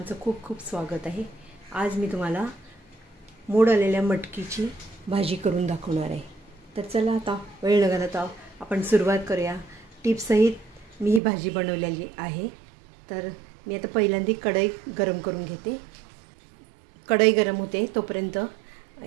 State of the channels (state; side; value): drops out; left; at 11.2 s